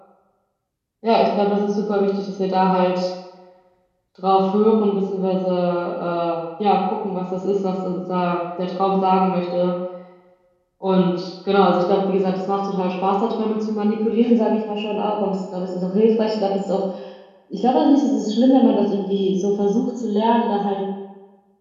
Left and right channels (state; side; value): identical; both; correlation 1.00